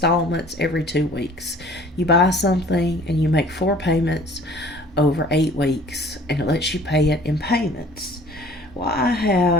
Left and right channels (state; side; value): normal; both; correlation 0.51